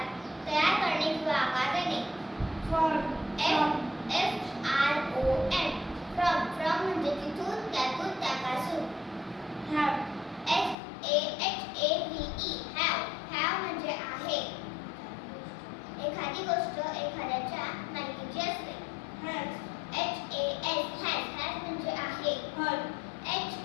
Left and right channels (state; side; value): drops out; right; at 10.8 s